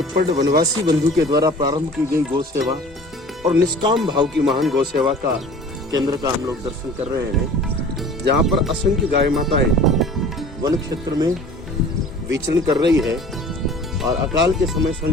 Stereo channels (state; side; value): normal; both; correlation 0.45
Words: वनवासी बंधु के द्वारा प्रारंभ की गई गौ सेवा और निष्काम भाव की महान गौ सेवा का केंद्र का हम लोग दर्शन कर रहे हैं, जहां पर असंख्य गाय माताएं वन क्षेत्र में विचरण कर रही है और अकाल के समय